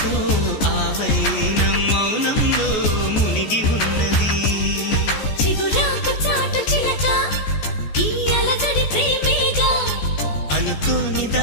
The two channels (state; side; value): late; right; 14 ms